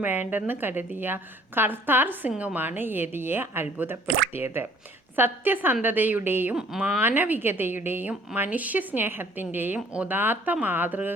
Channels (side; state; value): both; normal; correlation 0.57